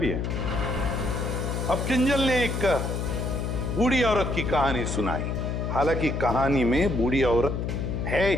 है। अब किंजल ने एक बूढ़ी औरत की कहानी सुनाई। हालांकि कहानी में बूढ़ी औरत है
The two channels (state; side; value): noise; left; hum, 2 dB below the sound